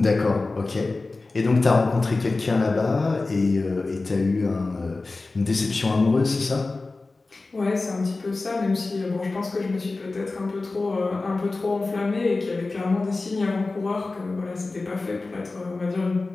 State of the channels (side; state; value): right; quieter; 3.5 dB